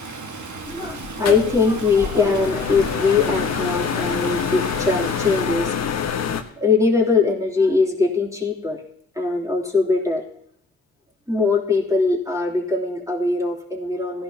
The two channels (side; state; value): right; quieter; 4.0 dB